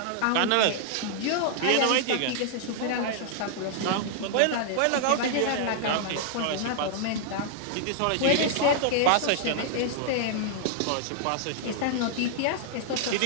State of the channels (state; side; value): different; both; correlation -0.01